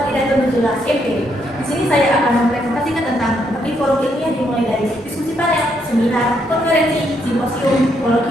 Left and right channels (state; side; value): normal; both; correlation 0.75